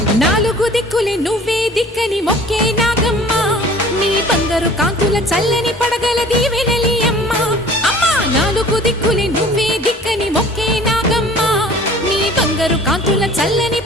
నాలుగు దిక్కులే నువ్వే దిక్కని మొక్కే నాగమ్మ నీ బంగారు కాంతుల చల్లని పడగల దీవెనలి అమ్మ అమ్మా నాలుగు దిక్కులే నువ్వే దిక్కని మొక్కే నాగమ్మ నీ బంగారు కాంతుల చల్లని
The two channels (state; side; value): normal; both; correlation 0.48